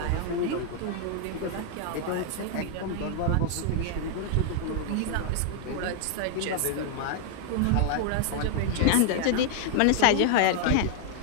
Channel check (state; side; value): different; both; correlation 0.00